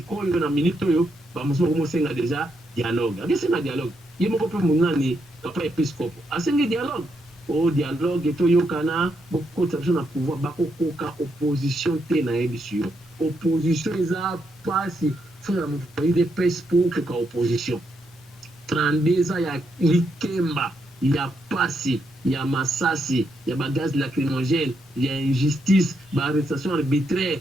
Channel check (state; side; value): normal; both; correlation 0.80